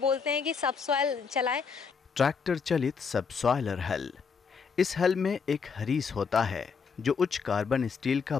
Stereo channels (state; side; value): quieter; right; 5.7 dB